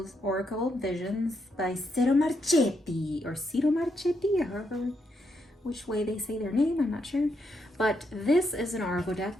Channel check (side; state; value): both; normal; correlation 0.79